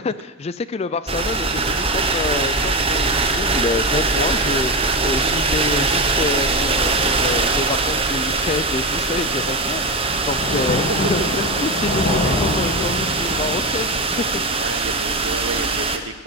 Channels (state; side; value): normal; both; correlation 0.15